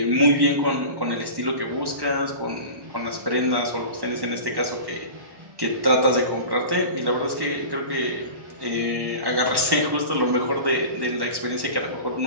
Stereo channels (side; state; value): left; late; 1.1 ms